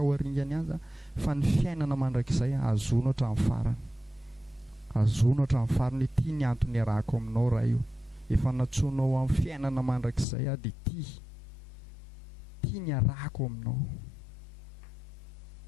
ho aringany azy, fa ny fiainana mandrakizay azono hatramin'ny farany, azono hatramin'ny farany. Ity ny antony arahako aminao raha io, efa natsoinao amin'ny fiainana mandrakizay dia ity ny arahako aminao,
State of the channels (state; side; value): drops out; right; at 10.2 s